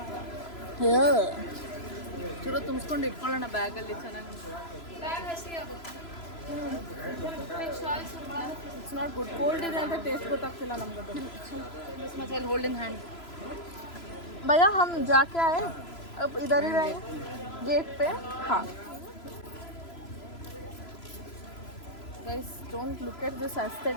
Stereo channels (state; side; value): late; right; 3.0 ms